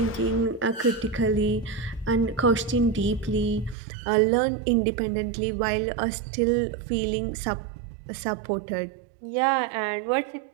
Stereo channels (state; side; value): drops out; left; at 3.8 s